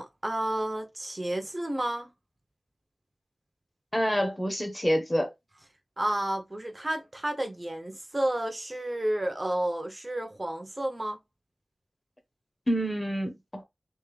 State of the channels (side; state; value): both; normal; correlation 0.97